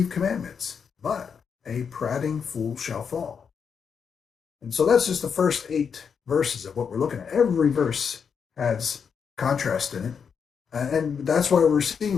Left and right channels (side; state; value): right; quieter; 6.6 dB